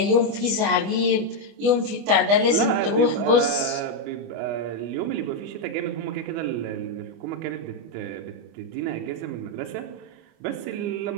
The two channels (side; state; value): left; late; 25 ms